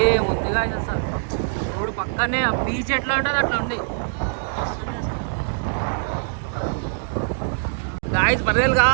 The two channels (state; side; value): silent; left; digital silence